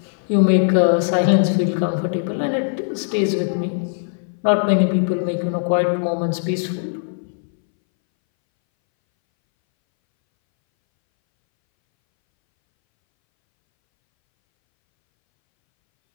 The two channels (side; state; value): right; silent; 63 dB below the other